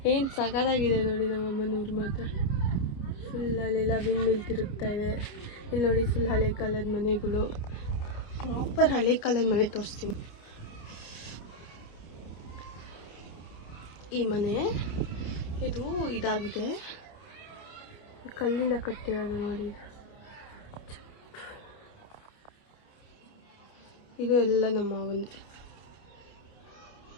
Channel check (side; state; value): right; late; 29 ms